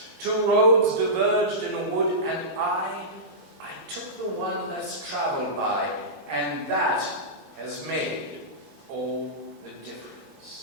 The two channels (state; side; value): normal; both; correlation -0.16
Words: 2 roads diverged in a wood, and I took the one less traveled by, and that has made all the